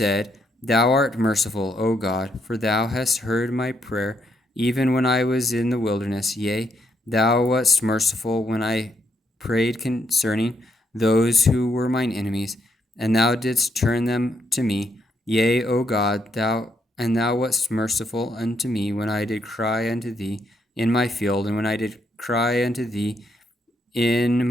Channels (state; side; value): normal; both; correlation 0.76